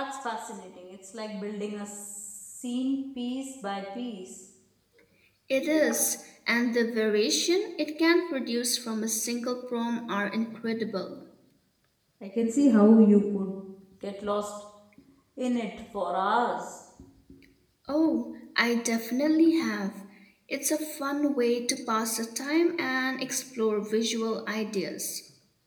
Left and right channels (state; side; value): identical; both; correlation 1.00